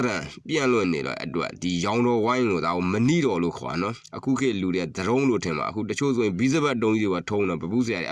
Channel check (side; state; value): both; identical; correlation 1.00